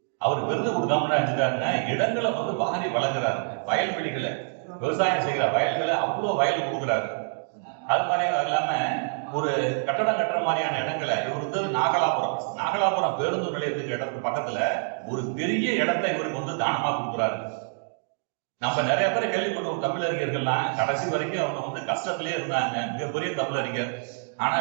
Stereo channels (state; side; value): silent; left; 61 dB below the other